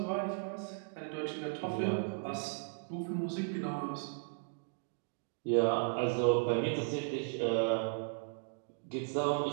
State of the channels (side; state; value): left; silent; digital silence